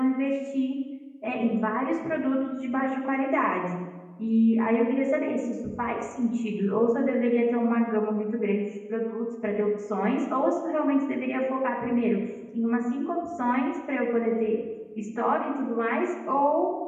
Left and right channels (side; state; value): both; identical; correlation 1.00